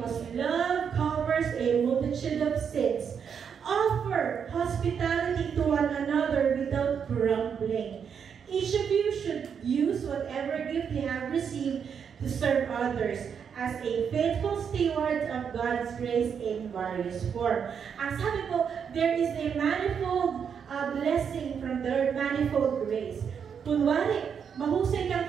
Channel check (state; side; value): quieter; left; 7.2 dB